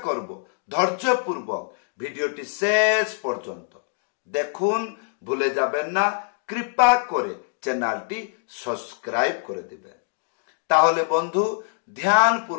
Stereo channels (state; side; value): silent; right; digital silence